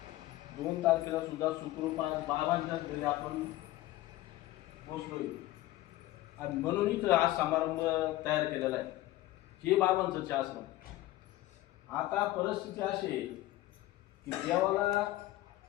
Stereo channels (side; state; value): right; quieter; 16.3 dB